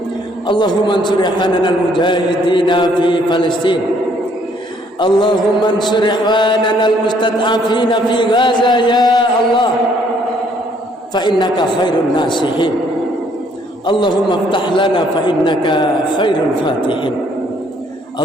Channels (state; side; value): normal; both; correlation 0.65